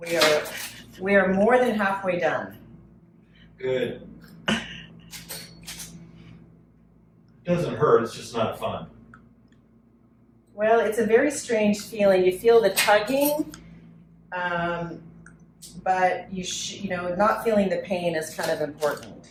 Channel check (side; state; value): both; identical; correlation 1.00